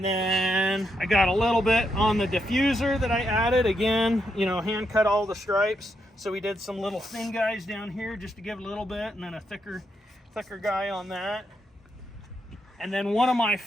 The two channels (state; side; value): normal; both; correlation 0.80